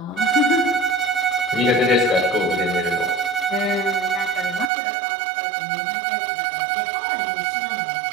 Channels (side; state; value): left; drops out; at 4.7 s